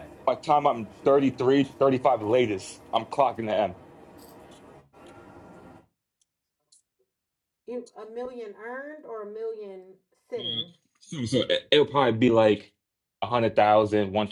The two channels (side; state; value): both; identical; correlation 1.00